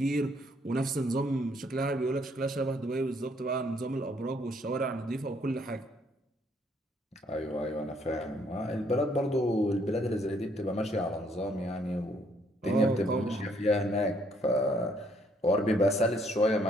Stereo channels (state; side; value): normal; both; correlation 0.67